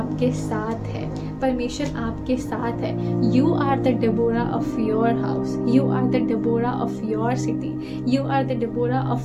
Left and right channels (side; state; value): both; identical; correlation 1.00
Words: साथ है। परमेश्वर आपके साथ है। You are the Deborah of your house, you are the Deborah of your city, you are the Deborah